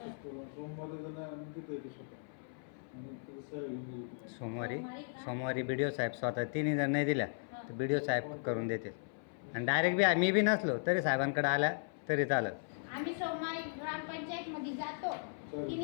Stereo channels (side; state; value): right; silent; 53 dB below the other